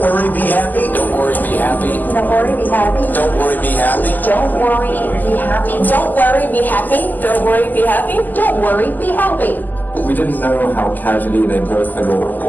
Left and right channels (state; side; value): late; right; 0.085 ms